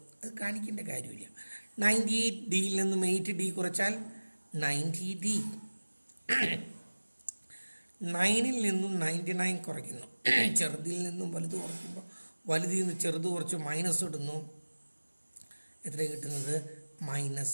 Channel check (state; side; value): inverted; both; correlation -1.00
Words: അത് കാണിക്കേണ്ട കാര്യമില്ല. 98Dയിൽ നിന്നും 8D കുറച്ചാൽ 90D. 9ൽ നിന്നും 99 കുറയ്ക്കുന്നു. ചെറുതിൽ നിന്നും വലുത് കുറയ്ക്കുമ്പോൾ വലുതിൽ നിന്ന് ചെറുത് കുറച്ച് മൈനസ് ഇടുന്നു. എത്ര കിട്ടുന്നത്?